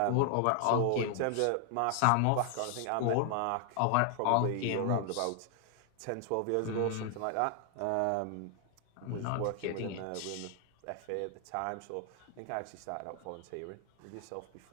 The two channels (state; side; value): different; both; correlation 0.00